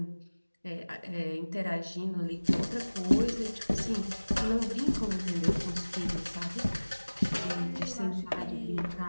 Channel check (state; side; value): inverted; both; correlation -1.00